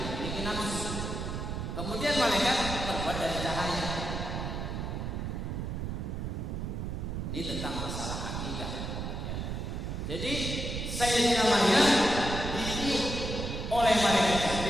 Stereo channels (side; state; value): right; noise; rumble, 4 dB below the sound